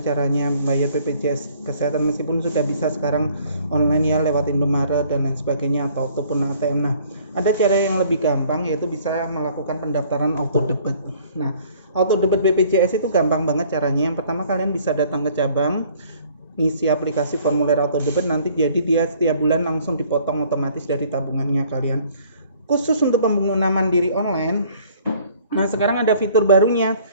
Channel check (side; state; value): both; inverted; correlation -0.57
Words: caranya bayar BPJS Kesehatan meskipun sudah bisa sekarang online ya lewat Indomaret dan lain sebagainya ataupun ATM. Nah, ada cara yang lebih gampang yaitu bisa melakukan pendaftaran auto debit. Nah, auto debit BPJS itu gampang banget caranya. Yang pertama kalian bisa datang ke cabang, ngisi aplikasi formulir auto debit, nanti jadi dia setiap bulan langsung dipotong otomatis dari tabungannya kalian. Khusus untuk pengguna mandiri online, nah sekarang ada fitur barunya.